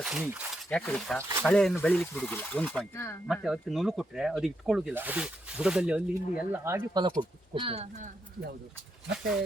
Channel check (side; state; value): both; normal; correlation 0.81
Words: ಸ್ನೇಹಿ. ಯಾಕೆ ಗೊತ್ತಾ, ಕಳೆಯನ್ನು ಬೆಳಿಲಿಕ್ಕೆ ಬಿಡುದಿಲ್ಲ, ಒಂದು ಪಾಯಿಂಟ್. ಮತ್ತೆ ಅದಕ್ಕೆ ನುಲು ಕೊಟ್ರೆ ಅದು ಇಟ್ಕೊಳ್ಳುದಿಲ್ಲ, ಅದು ಬುಡದಲ್ಲಿ ಅಲ್ಲಿ ಇಲ್ಲಿ ಎಲ್ಲ ಆಗಿ ಫಲ ಕೊಡ್ತದೆ. ಯಾವುದು ಮತ್ತೆ